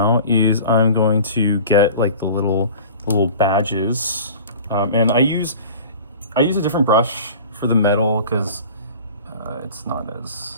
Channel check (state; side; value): inverted; both; correlation -0.41